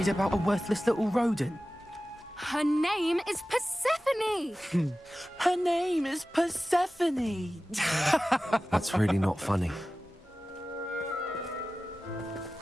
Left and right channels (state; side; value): normal; both; correlation 0.96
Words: about a worthless little rodent. Her name is Persephone! Her name is Persephone! That's really not funny.